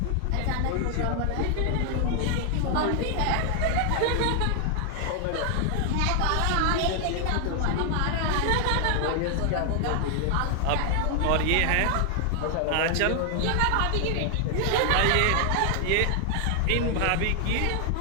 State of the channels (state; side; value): different; both; correlation 0.00